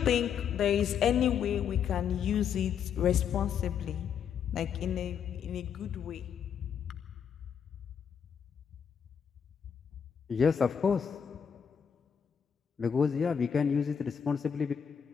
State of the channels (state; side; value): quieter; right; 7.6 dB